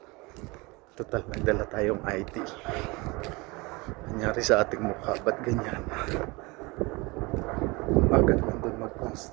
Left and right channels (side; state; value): left; quieter; 25.2 dB